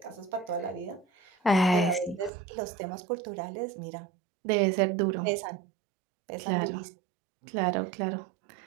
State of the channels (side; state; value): left; drops out; at 2.3 s